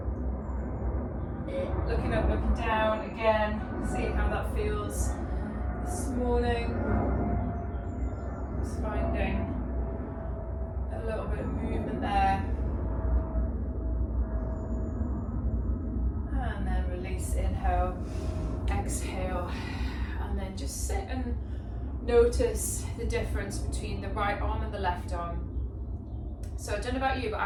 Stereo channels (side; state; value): both; identical; correlation 1.00